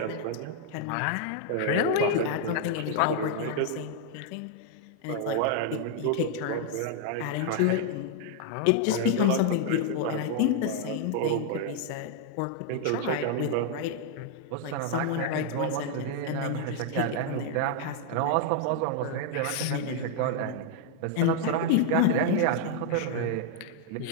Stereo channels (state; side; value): different; both; correlation 0.00